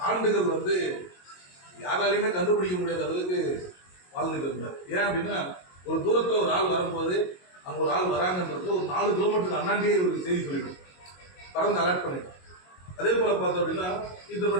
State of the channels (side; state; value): right; late; 22 ms